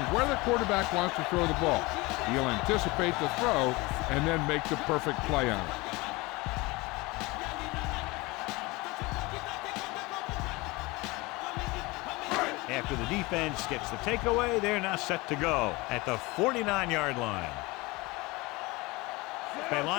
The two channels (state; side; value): quieter; right; 23.2 dB